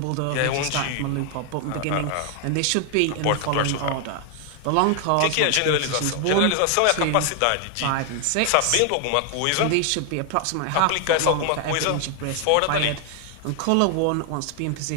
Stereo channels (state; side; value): different; both; correlation 0.00